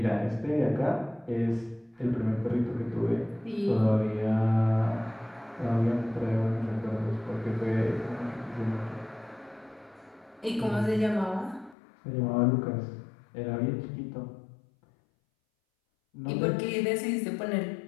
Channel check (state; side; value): drops out; right; at 11.8 s